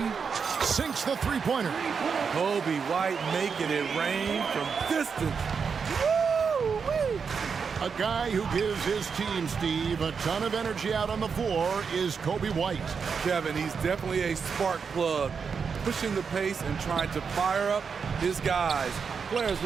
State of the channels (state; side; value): quieter; left; 5.9 dB